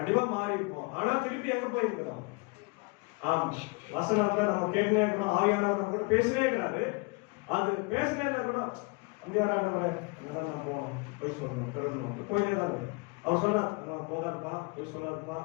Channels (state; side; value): quieter; right; 29.5 dB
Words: மாறி இருப்போம். ஆனா திருப்பி எங்க போய் இருக்கிறோம்? ஆமா, வசனத்துல நம்ம கேட்டுனே இருக்கிறோம். ஆவியானவர் நம்ம கூட பேசினே இருக்கிறாரு. அது பேசினே கூட நான் போனோம், போய் சொல்லணும், தொடரணும், போயிட்டே தான். அவர் சொன்னார், போதாதுப்பா, போய் சொல்லாதுப்பா,